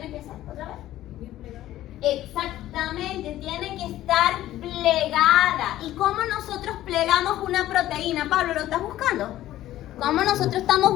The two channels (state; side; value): quieter; right; 14.1 dB